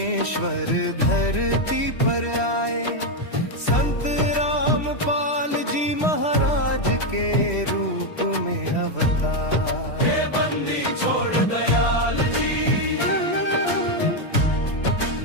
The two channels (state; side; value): late; right; 3.1 ms